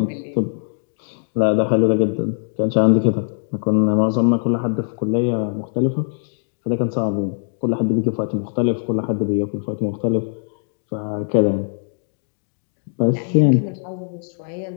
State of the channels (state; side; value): silent; right; digital silence